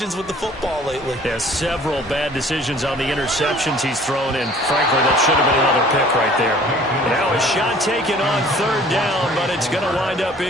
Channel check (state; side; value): normal; both; correlation 0.52